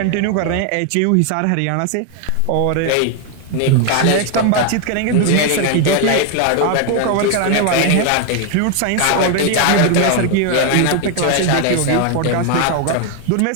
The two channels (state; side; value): different; both; correlation 0.01